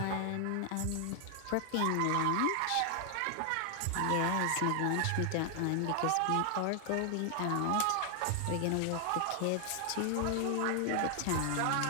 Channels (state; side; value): different; both; correlation 0.00